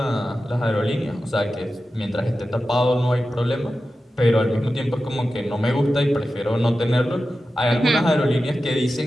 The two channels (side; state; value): both; normal; correlation 0.93